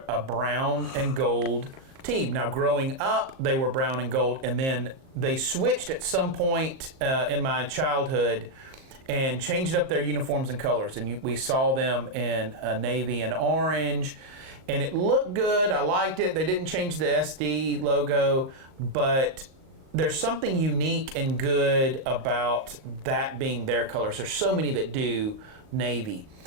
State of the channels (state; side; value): late; left; 38 ms